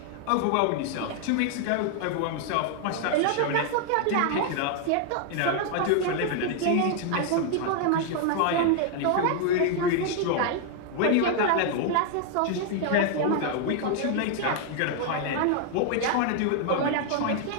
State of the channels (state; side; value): different; both; correlation 0.00